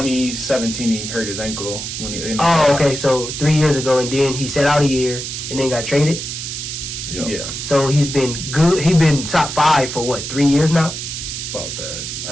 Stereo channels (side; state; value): right; noise; hiss, 6 dB below the sound